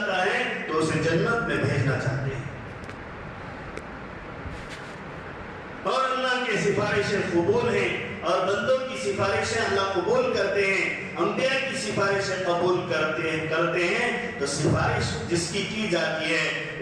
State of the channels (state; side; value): identical; both; correlation 1.00